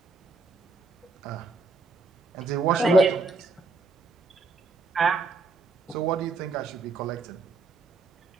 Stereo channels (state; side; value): quieter; left; 3.7 dB